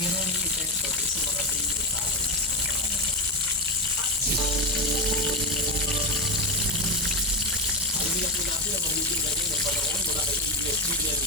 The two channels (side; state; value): both; normal; correlation 0.13